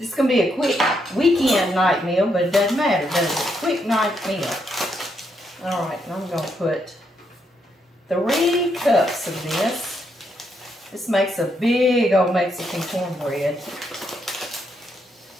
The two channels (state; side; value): normal; both; correlation 0.78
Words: is going to be a quick weekend night meal, but it doesn't matter, does it? Quick night meal. All right, and I'm going to put 3 cups of this. This makes a big old Mexican cornbread